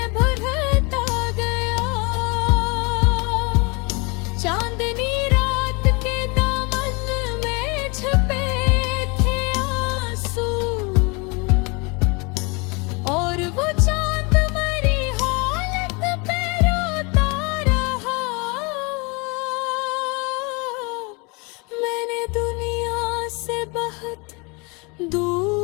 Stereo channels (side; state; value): right; quieter; 29.4 dB